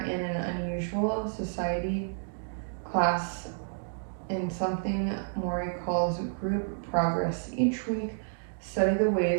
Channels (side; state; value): left; silent; digital silence